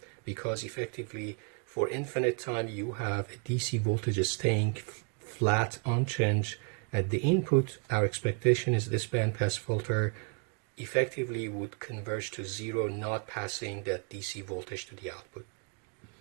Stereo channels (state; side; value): quieter; left; 36.9 dB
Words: because effectively for infinite time you have a DC voltage staying flat, unchanged at the input. Our expectation is this bandpass filter effectively would converge to 0, not passing that DC voltage to the output.